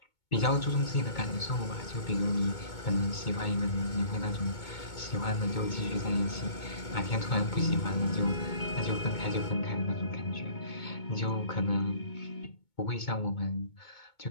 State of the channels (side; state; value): right; late; 2.2 ms